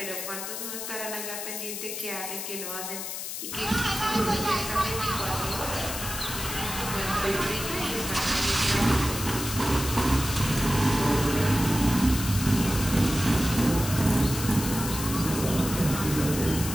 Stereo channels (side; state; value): left; noise; hiss, 6 dB below the sound